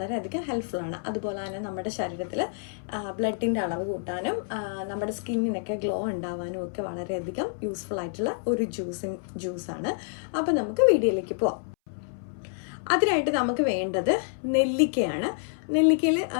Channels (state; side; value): silent; right; 59 dB below the other